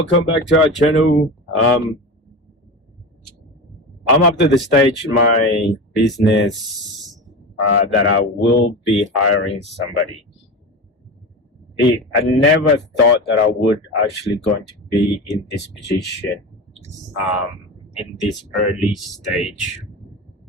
back to our channel. I'm up to the stage in my business that I will be hiring somebody. I never thought that I would actually going to be in this position in this early stage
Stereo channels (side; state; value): both; normal; correlation 0.26